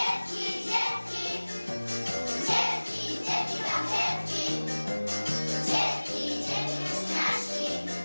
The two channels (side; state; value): both; inverted; correlation -1.00